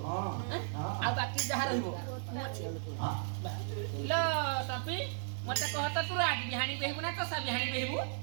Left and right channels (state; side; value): silent; left; digital silence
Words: आ बाकी जहा रहइबो लो सपी मते कहत तू राज बिहानी बेहबु ना तो सा बिहानी बेहबु